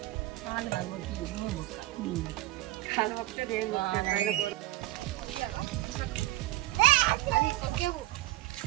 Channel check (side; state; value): left; quieter; 17.0 dB